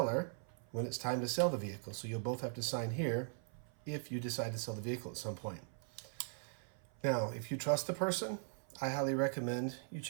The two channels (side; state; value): left; silent; 51 dB below the other